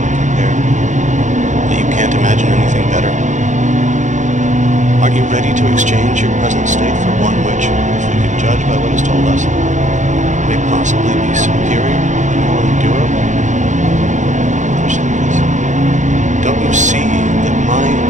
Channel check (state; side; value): late; left; 0.35 ms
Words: compare, that you can't imagine anything better? Aren't you ready to exchange your present state for one which, if we can judge by what is told us, may possibly be superior and more endurable? Don't you see that my